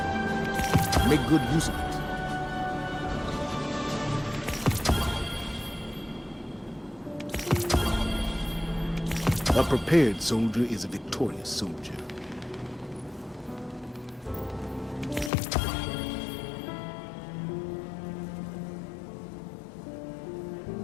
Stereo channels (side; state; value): right; drops out; at 15.3 s